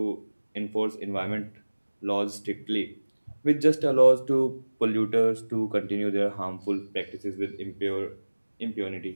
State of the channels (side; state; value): both; inverted; correlation -1.00